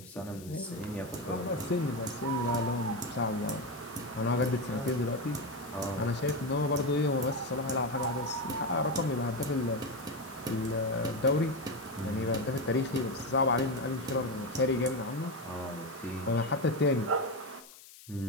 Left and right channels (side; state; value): left; noise; hiss, 19 dB below the sound